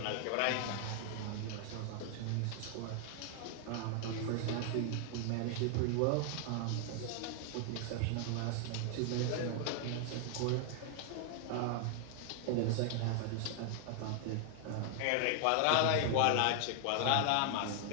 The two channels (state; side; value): different; both; correlation 0.00